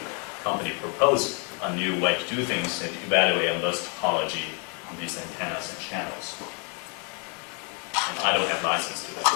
company propose a new way to do things and evaluate and list topology on these antennas and channels. And I don't have license to that,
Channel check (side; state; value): right; quieter; 36.7 dB